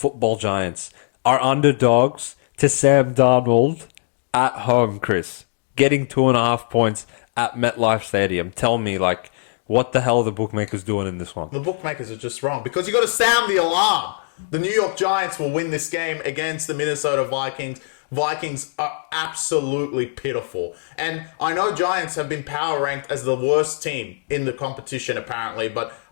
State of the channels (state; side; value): silent; right; digital silence